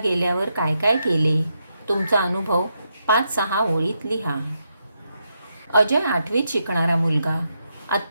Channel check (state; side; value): inverted; both; correlation -0.82